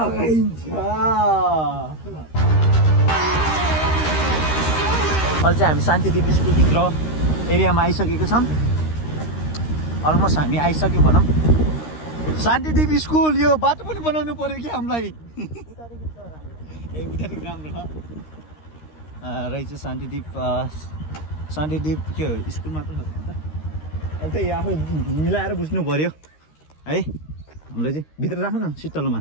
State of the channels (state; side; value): late; right; 13 ms